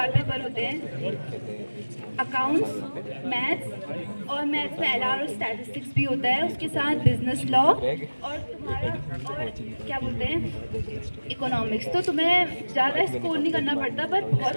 पेपर होते हैं, अकाउंट्स, मैथ्स, और मैथ्स में एलआर और स्टैटिस्टिक्स भी होता है, उसके साथ बिजनेस लॉ और तुम्हारा और क्या बोलते हैं इकोनॉमिक्स। तो तुम्हें ज़्यादा स्कोर नहीं करना पड़ता, पर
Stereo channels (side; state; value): both; inverted; correlation -1.00